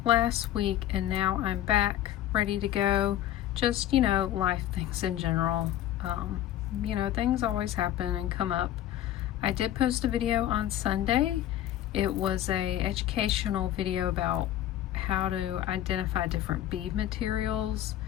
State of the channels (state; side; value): quieter; right; 12.5 dB